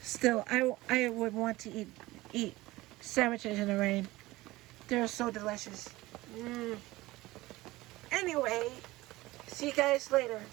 Still, I would want to eat sandwiches in the rain. They're so delicious. Anyway, see you guys later.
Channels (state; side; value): quieter; left; 19.0 dB